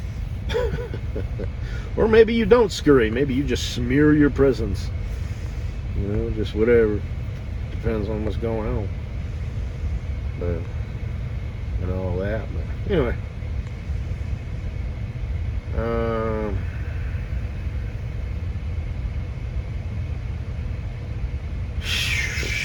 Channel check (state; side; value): identical; both; correlation 1.00